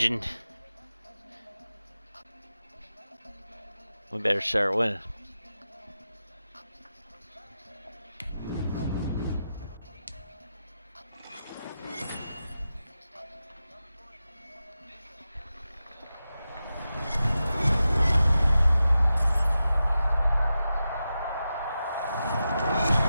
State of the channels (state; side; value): inverted; both; correlation -0.91